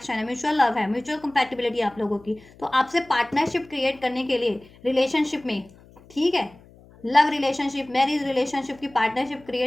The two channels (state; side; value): noise; left; hum, 25 dB below the sound